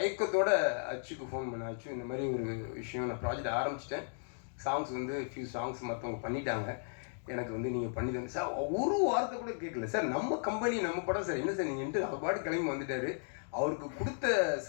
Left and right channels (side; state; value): right; silent; digital silence